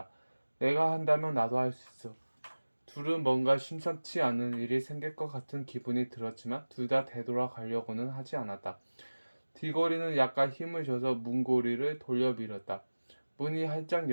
내가 한다면 나도 할 수 있어. 둘은 뭔가 심상치 않은 일이 생길 것 같은 기분이 들었지만 둘 다 되돌아가려고는 하지 않았다. 디고리는 약간 힘을 줘서 문고리를 돌려 밀었다. 문이 활짝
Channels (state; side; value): inverted; both; correlation -1.00